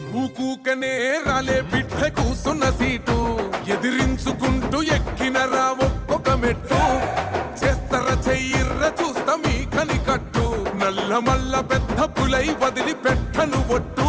ఊకూకనే రాలే బిడ్డ కూసున్న సీటు ఎదిరించుకుంటూ ఎక్కినరా ఒక్కొక్క మెట్టు చేస్తర చెయ్యిర్ర చూస్తా మీ కని కట్టు నల్ల మల్ల పెద్ద పులై వదిలి పెట్టను ఒట్టు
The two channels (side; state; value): both; identical; correlation 1.00